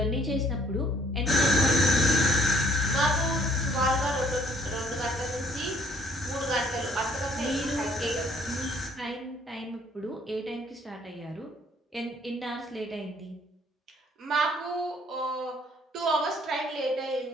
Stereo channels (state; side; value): normal; both; correlation 0.61